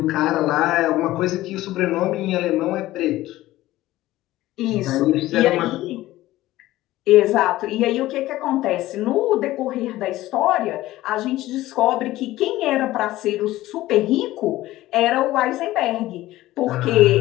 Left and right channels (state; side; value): quieter; right; 16.3 dB